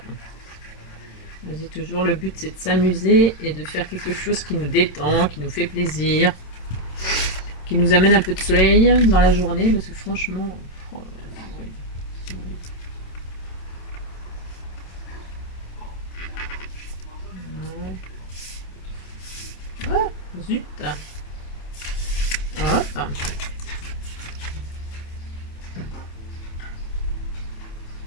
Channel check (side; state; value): right; late; 27 ms